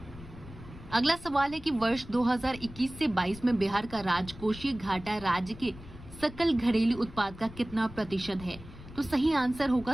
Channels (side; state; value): left; noise; rumble, 16 dB below the sound